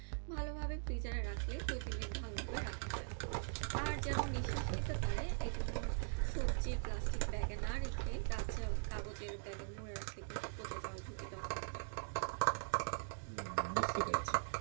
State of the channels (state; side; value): silent; left; digital silence